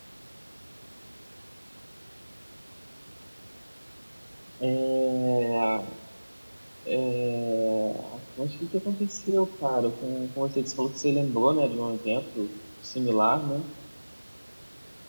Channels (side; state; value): both; inverted; correlation -1.00